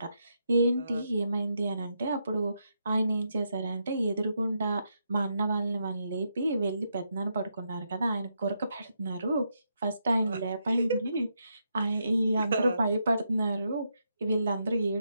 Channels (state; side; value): inverted; both; correlation -0.81